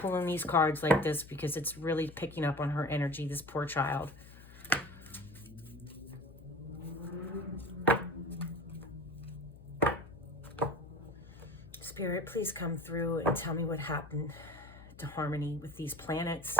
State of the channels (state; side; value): noise; left; hum, 19 dB below the sound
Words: these cards like this because it's really picking up on her energy, this poor child. Spirit, please come through and tell me what happened to Harmony with these planets.